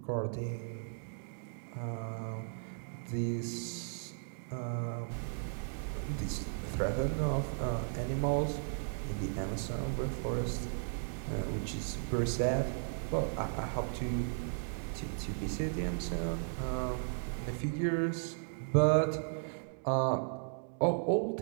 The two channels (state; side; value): silent; left; digital silence